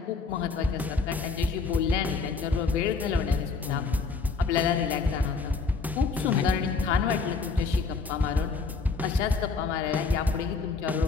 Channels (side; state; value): right; quieter; 4.6 dB